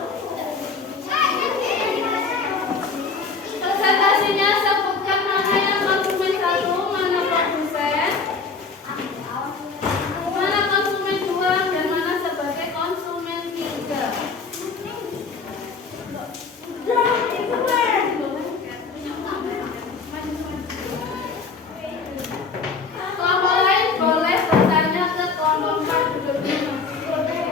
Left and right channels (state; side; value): quieter; right; 4.7 dB